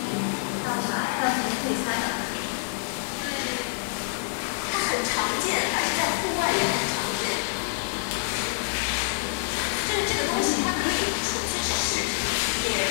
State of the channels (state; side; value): silent; right; digital silence